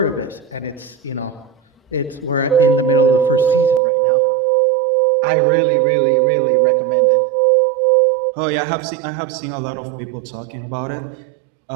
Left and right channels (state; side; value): drops out; left; at 3.8 s